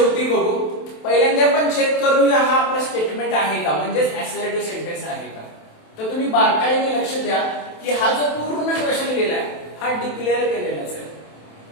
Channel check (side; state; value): right; late; 27 ms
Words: बघू. पहिल्यांदा आपण चेक करूया हा आपला स्टेटमेंट आहे का, म्हणजेच असर्टिव्ह सेंटेन्स आहे का. तर तुम्ही बारकाईने लक्ष द्या की हा जो पूर्ण क्वेश्चन लिहिलाय हा डिक्लेअर केलेलाच आहे.